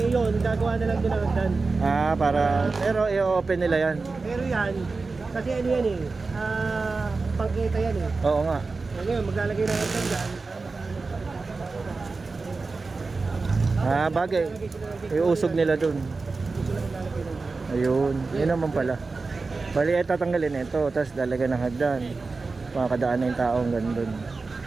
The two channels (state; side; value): quieter; left; 4.0 dB